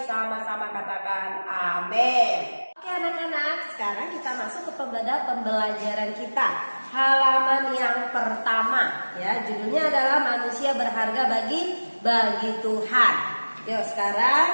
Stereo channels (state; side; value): inverted; both; correlation -1.00